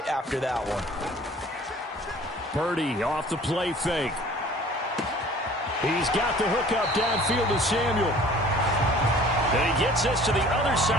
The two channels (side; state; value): both; normal; correlation 0.49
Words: after that one. Purdy off the play fake. He's got the hookup downfield to Samuel. And he gets us to the other